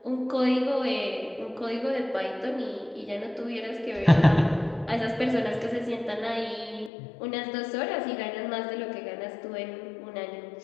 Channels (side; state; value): right; drops out; at 6.9 s